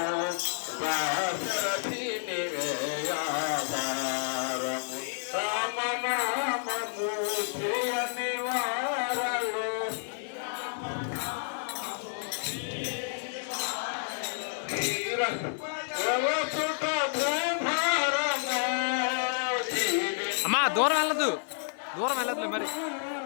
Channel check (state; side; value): silent; right; digital silence